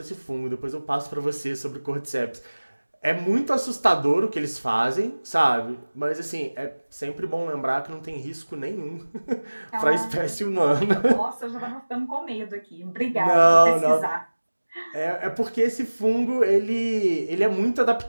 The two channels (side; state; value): both; inverted; correlation -1.00